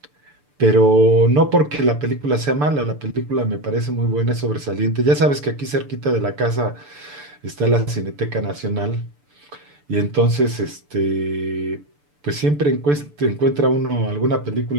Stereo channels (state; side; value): late; left; 6.8 ms